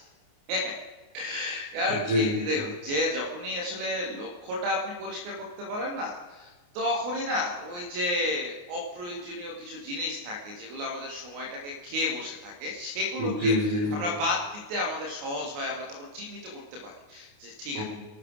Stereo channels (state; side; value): late; left; 28 ms